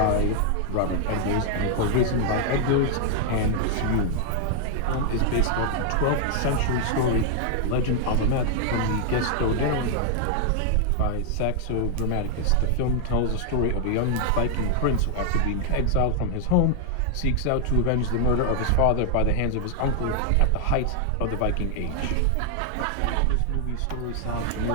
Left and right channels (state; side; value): different; both; correlation 0.00